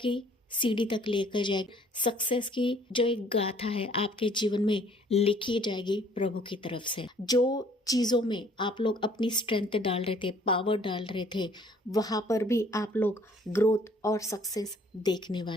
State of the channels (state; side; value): normal; both; correlation 0.58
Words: सीढ़ी तक लेकर जाएगी। सक्सेस की जो एक गाथा है आपके जीवन में लिखी जाएगी प्रभु की तरफ से। जो चीज़ों में आप लोग अपनी स्ट्रेंथ डाल रहे थे, पावर डाल रहे थे, वहाँ पर भी आप लोग ग्रोथ और सक्सेस देखने